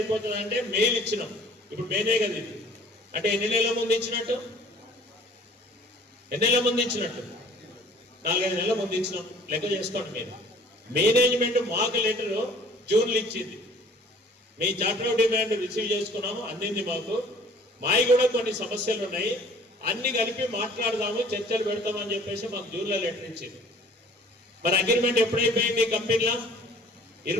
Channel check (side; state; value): both; normal; correlation 0.52